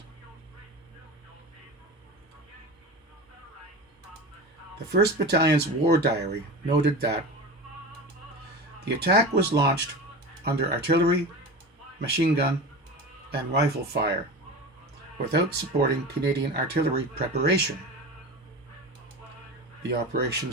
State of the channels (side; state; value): both; normal; correlation 0.29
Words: The 1st Battalion's war diary noted that the attack was launched under artillery, machine gun, and rifle fire without supporting Canadian artillery preparation. The operation